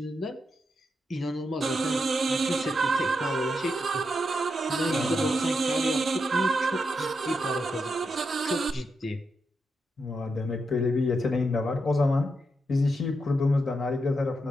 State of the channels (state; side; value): normal; both; correlation 0.84